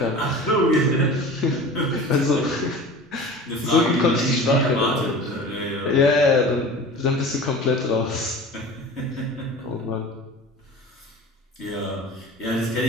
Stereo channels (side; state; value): both; normal; correlation 0.38